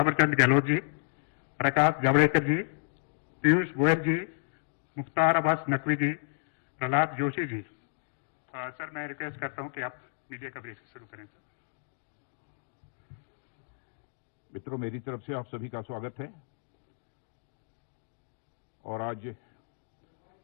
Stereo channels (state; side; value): silent; right; digital silence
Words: गहलोत जी, प्रकाश जावड़ेकर जी, पीयूष गोयल जी, मुख्तार अब्बास नकवी जी, प्रहलाद जोशी जी। सर, मैं रिक्वेस्ट करता हूं कि आप मीडिया का ब्रीफिंग शुरू करें। सर, मित्रों, मेरी तरफ से आप सभी का स्वागत है। और आज